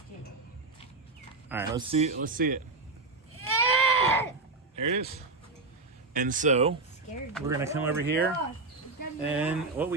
it. All right, let's see it. There it is. And so Scared. we're gonna come over here, and what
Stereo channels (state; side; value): quieter; left; 3.6 dB